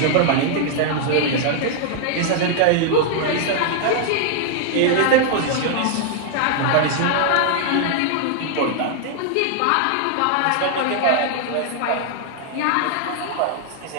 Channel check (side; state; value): both; different; correlation 0.00